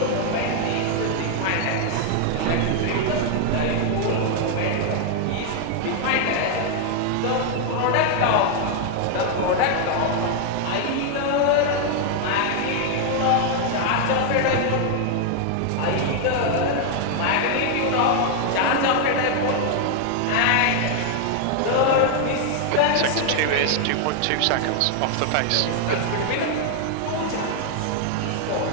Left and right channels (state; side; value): different; both; correlation 0.00